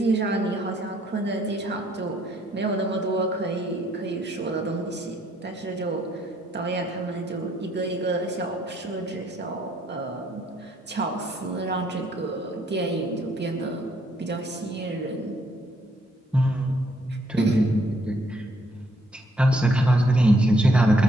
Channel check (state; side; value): normal; both; correlation 0.68